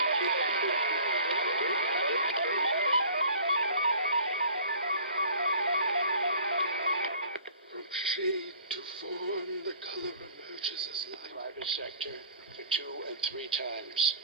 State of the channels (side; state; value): both; inverted; correlation -0.48